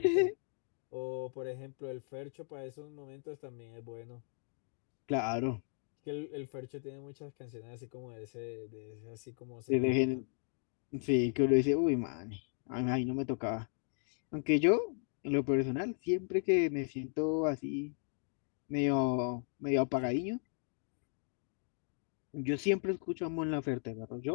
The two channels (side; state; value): right; silent; 54 dB below the other